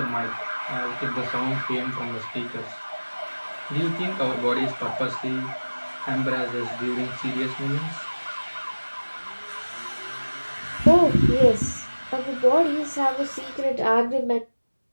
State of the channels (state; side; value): inverted; both; correlation -1.00